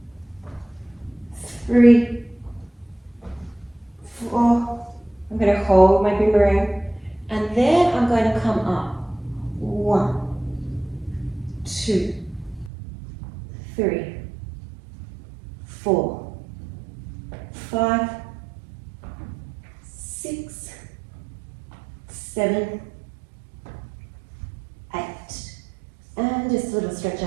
3, 4. I'm going to hold my boomerang, and then I'm going to come up. 1, 2, 3, 4, 5, 6, 7, 8. And just a little stretch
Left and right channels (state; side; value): drops out; left; at 12.7 s